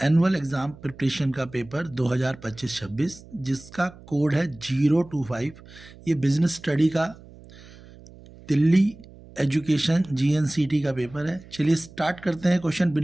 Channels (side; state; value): right; noise; hum, 21 dB below the sound